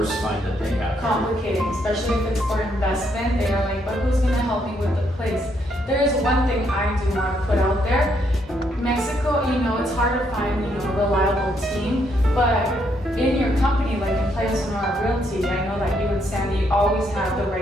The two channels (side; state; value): both; normal; correlation 0.74